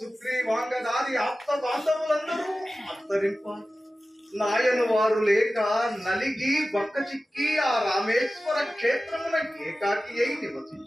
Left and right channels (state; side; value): normal; both; correlation 0.95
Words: ఆప్త బాంధవులందరూ అంతరింప నాయను వారు లేక నలిగి బక్క చిక్కి ఆ రామేశ్వర క్షేత్రమున ఏకాకి అయి